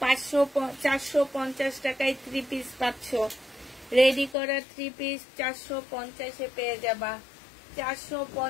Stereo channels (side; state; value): right; drops out; at 4.4 s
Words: 450 টাকায় 3 পিস পাচ্ছ। রেডি করা 3 পিস 450 এ পেয়ে যাবা।